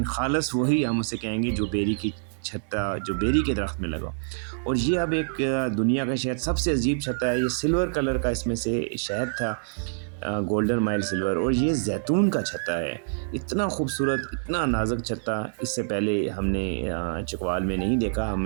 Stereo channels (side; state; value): left; silent; digital silence